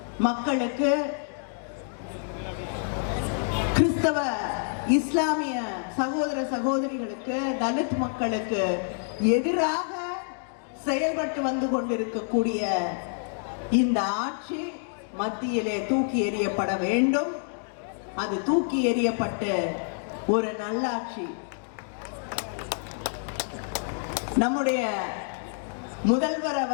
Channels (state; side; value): silent; right; digital silence